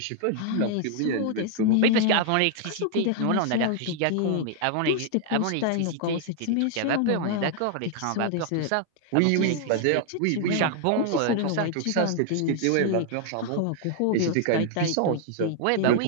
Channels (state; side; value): different; both; correlation 0.00